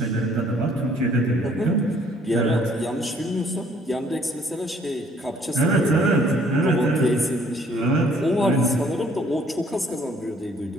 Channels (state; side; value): normal; both; correlation 0.61